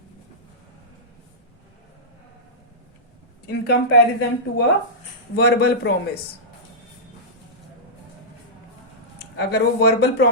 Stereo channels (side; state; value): both; normal; correlation -0.13